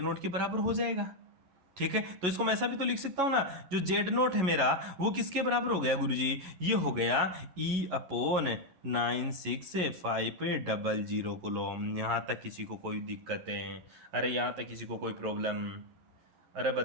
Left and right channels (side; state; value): left; late; 11 ms